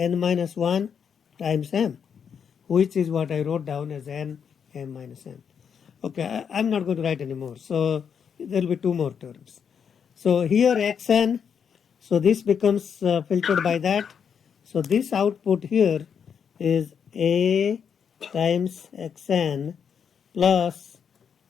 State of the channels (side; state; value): right; quieter; 7.2 dB